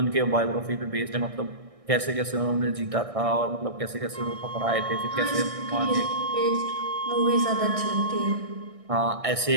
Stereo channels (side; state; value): left; late; 1.6 ms